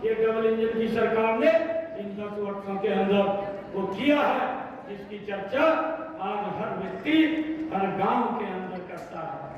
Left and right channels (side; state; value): both; identical; correlation 1.00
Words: ये डबल इंजन की सरकार ने इन 10 वर्षों के अंदर वो किया है, जिसकी चर्चा आज हर व्यक्ति हर गांव के अंदर करता है।